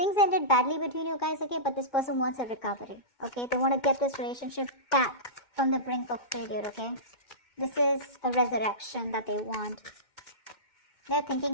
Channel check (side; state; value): right; late; 2.2 ms